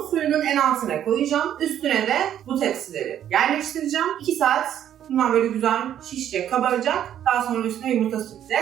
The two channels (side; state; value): left; quieter; 10.5 dB